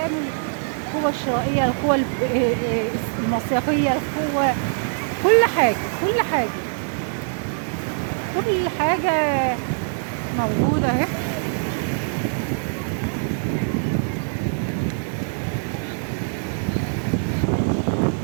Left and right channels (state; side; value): silent; left; digital silence